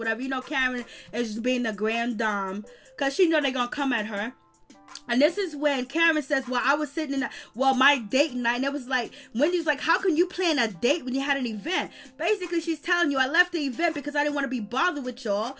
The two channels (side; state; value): both; identical; correlation 1.00